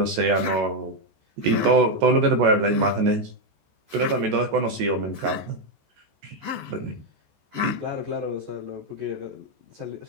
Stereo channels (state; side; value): late; left; 14 ms